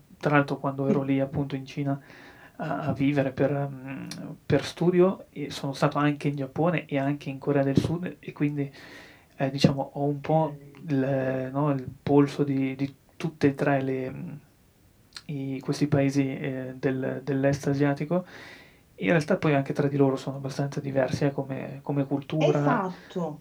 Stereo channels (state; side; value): identical; both; correlation 1.00